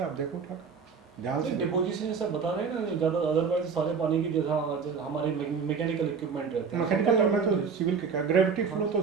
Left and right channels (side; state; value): left; quieter; 5.7 dB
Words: आप देखो उठा ध्यान से। डिपोजिशन सब बता रहे हैं ना, ज़्यादा अदरवाइज सारे पानी की जैसा हमारे मैकेनिकल इक्विपमेंट रहते हैं। मैकेनिकल में तो सिविल के क्या, ग्रेविटी फ्लो तो